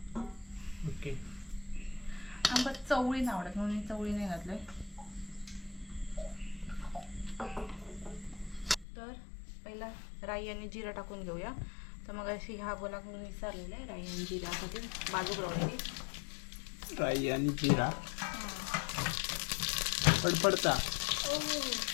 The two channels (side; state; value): right; drops out; at 8.8 s